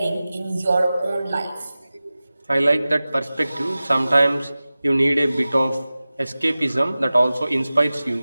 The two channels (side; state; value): both; inverted; correlation -0.97